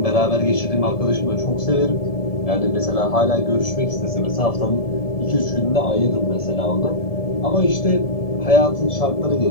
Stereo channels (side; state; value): right; late; 1.7 ms